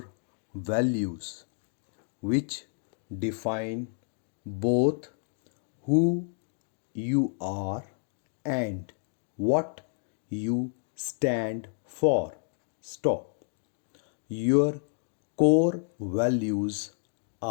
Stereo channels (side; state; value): right; silent; 58 dB below the other